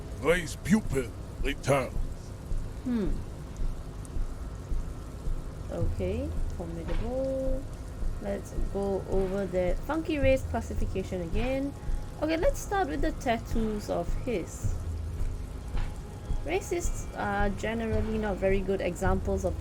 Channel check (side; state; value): both; identical; correlation 1.00